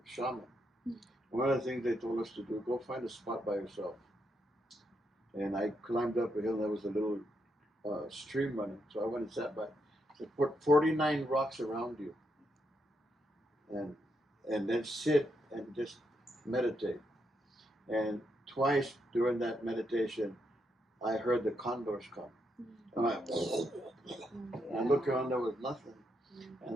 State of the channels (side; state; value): both; normal; correlation 0.80